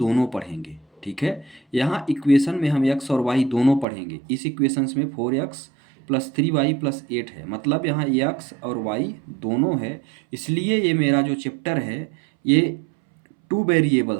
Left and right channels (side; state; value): left; drops out; at 3.9 s